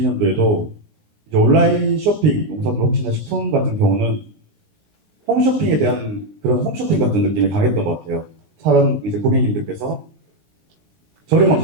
이제 온라인 쇼핑, 농산물 혹시나 식품 같은 경우는 홈쇼핑에 대한 그런 홈쇼핑 같은 느낌이 강했던 것 같아요. 사람 이제 고객님들께서 저렴한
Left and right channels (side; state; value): left; late; 19 ms